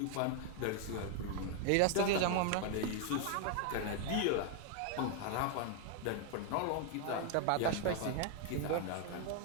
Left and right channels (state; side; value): different; both; correlation 0.00